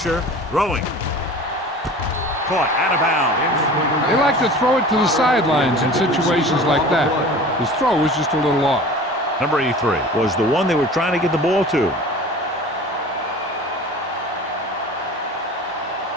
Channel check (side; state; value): both; normal; correlation 0.40